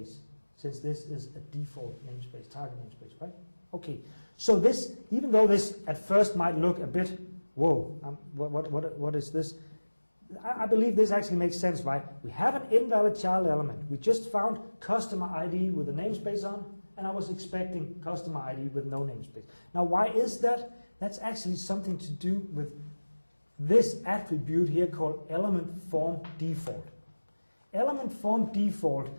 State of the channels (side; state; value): both; inverted; correlation -1.00